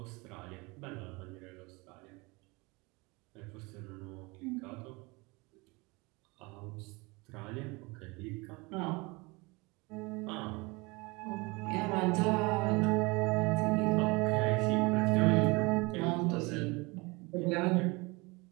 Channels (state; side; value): quieter; left; 25.8 dB